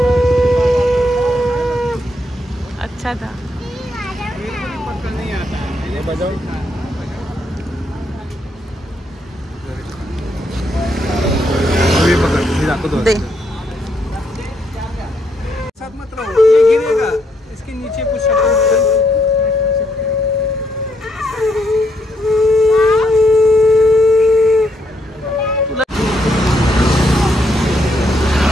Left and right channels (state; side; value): normal; both; correlation 0.75